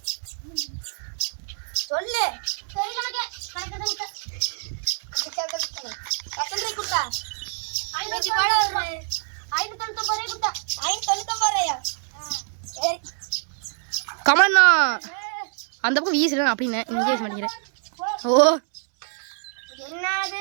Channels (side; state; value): left; silent; 62 dB below the other